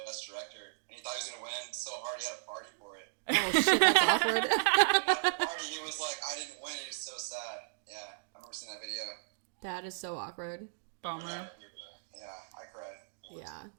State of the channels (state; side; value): silent; left; digital silence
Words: Director, and he thought he was going to win so hard he had a party for it. Oh shit, that's awkward. And at the party, he was like, I didn't win, he was so sad. Yeah, I remember seeing that video. That is so awkward. Bummer. Yeah, I cried. Yeah.